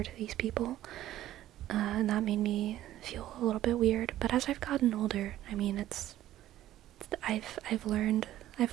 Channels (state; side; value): quieter; left; 13.6 dB